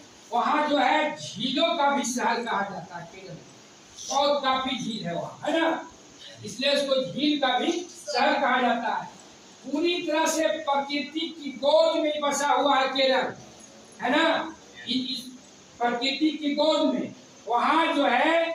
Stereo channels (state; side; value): identical; both; correlation 1.00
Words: वहाँ जो है झीलों का भी शहर कहा जाता है केरल में। बहुत काफी झील है वहाँ, है ना, इसलिए उसको झील का भी शहर कहा जाता है। पूरी तरह से प्रकृति की गोद में बसा हुआ है केरल, है ना, इस प्रकृति की गोद में। वहाँ जो है